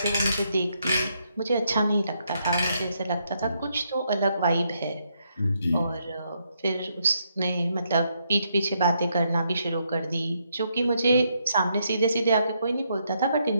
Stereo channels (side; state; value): both; inverted; correlation -0.77